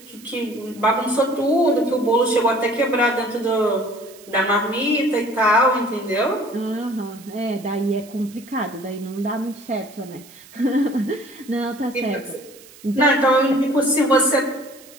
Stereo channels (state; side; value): noise; right; hiss, 22 dB below the sound